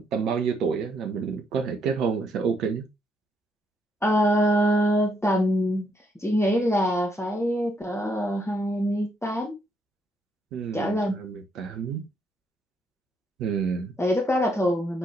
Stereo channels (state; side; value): normal; both; correlation 0.74